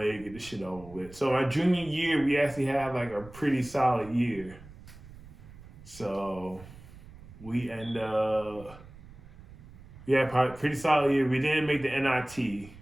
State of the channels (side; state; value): right; noise; rumble, 19 dB below the sound